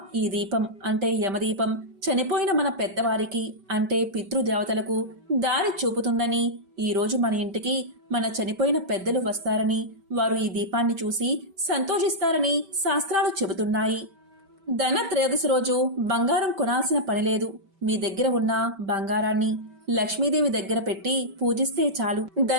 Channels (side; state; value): left; late; 5.1 ms